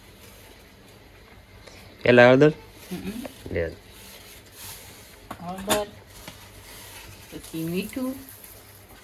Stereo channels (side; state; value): both; identical; correlation 1.00